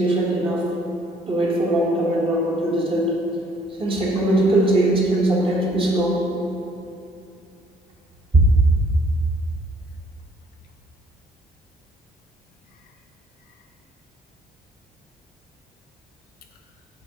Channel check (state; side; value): normal; both; correlation 0.62